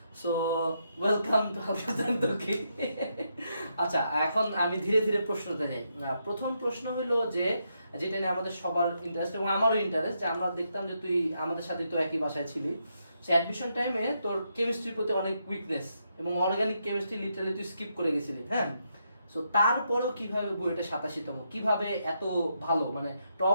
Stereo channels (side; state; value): both; inverted; correlation -0.81